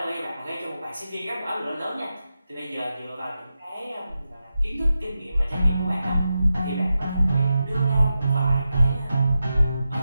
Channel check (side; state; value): both; inverted; correlation -0.90